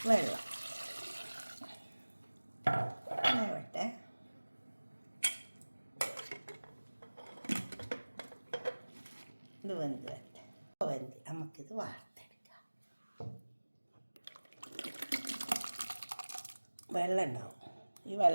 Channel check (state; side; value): inverted; both; correlation -1.00